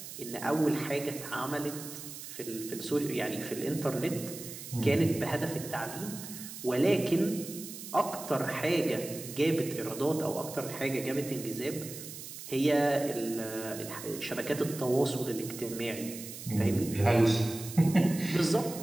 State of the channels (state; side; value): noise; right; hiss, 11 dB below the sound